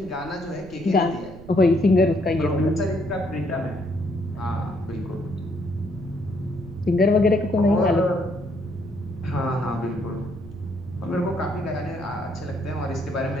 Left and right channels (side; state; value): right; noise; rumble, 16 dB below the sound